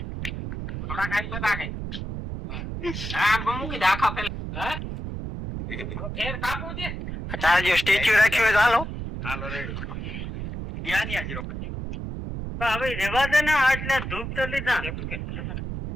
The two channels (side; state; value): right; noise; rumble, 6 dB below the sound